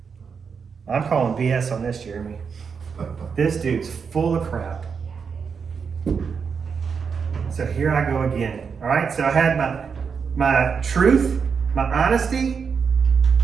I'm calling BS on this, Jeremy. This dude's full of crap. So here I go again. All right, so I had my truth, my honesty.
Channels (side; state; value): left; quieter; 6.0 dB